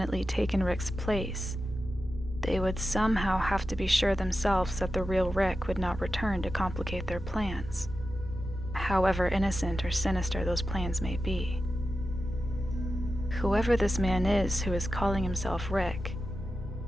taken Rick's place, they would somehow have to be sure themselves that the real Rick would not return to complicate their plans, however innocent or sinister those plans may be. Whoever this man is who is calling himself Rick,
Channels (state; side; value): noise; left; hum, 15 dB below the sound